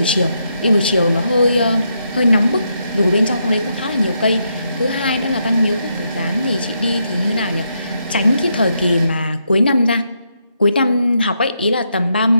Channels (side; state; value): both; inverted; correlation -0.80